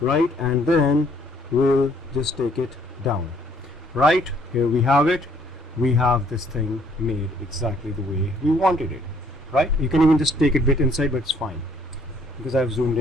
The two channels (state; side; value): normal; both; correlation 0.63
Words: right? And then we'll just take it down. Right, here we have it. We have this thing made exactly the way we wanted it, right? You can even just take it a bit inside, but it's fine because I've zoomed